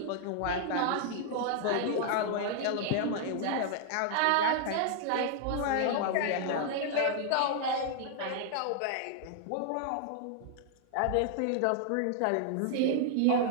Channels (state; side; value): different; both; correlation 0.00